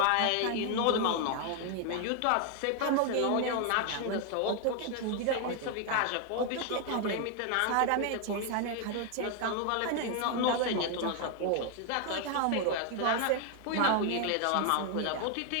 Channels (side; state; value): both; different; correlation 0.01